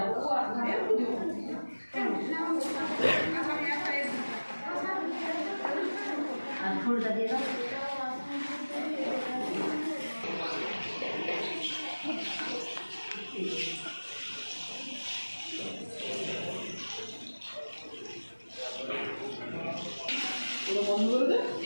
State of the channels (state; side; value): inverted; both; correlation -1.00